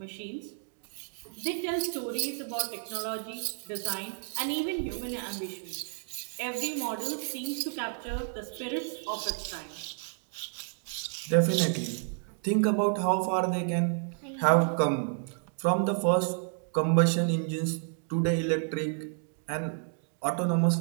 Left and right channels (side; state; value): left; silent; 56 dB below the other